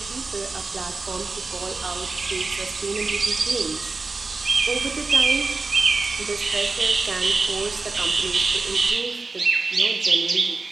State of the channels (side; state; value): left; quieter; 3.8 dB